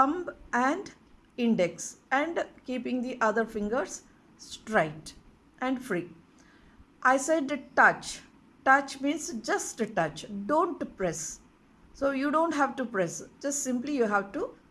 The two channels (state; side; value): identical; both; correlation 1.00